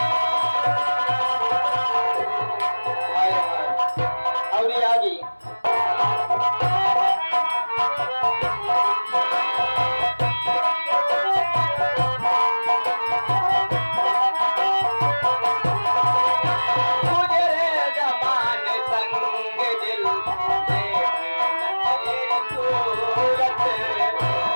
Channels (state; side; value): inverted; both; correlation -1.00